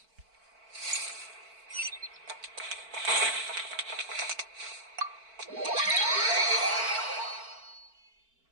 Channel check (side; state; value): left; late; 4.5 ms